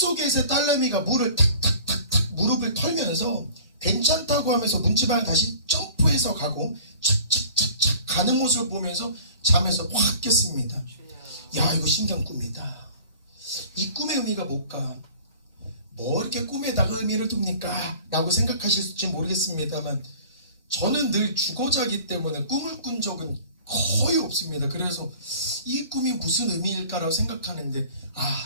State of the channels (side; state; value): both; inverted; correlation -0.46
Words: 딸내미가 물을 탁탁탁탁 무릎을 털면서 괜찮다고 하면서 문지방을 다시 점프해서 가고 착착착착 가는 모습을 보면서 잠에서 확 깼습니다. 야, 이거 신기한 꿈이다. 이 꿈의 의미가 뭘까? 뭐 이렇게 꿈에다가 의미를 둡니까? 라고 생각하실지 모르겠습니다만 저는 늘 죽어자기 때문에 꿈을 꾼 적은 거의 없습니다. 그래서 이 꿈이 무슨 의미일까라고 생각하는데